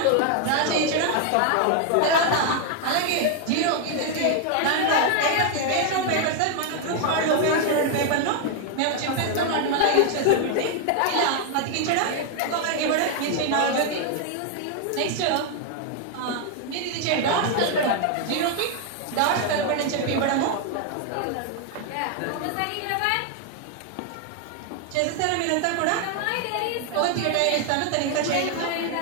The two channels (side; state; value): both; different; correlation 0.00